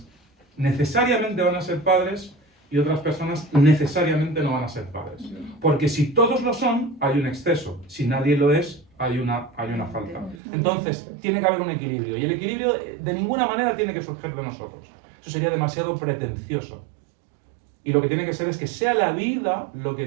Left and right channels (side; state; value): left; drops out; at 10.4 s